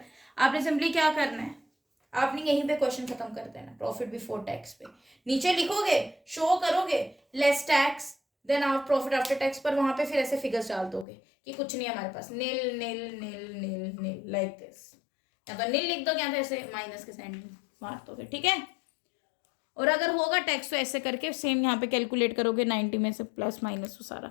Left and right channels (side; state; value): right; drops out; at 11.1 s